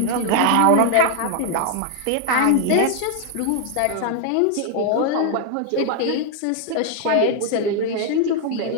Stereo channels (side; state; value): both; different; correlation 0.00